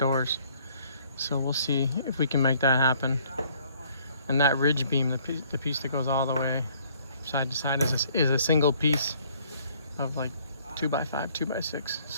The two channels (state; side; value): inverted; both; correlation -0.61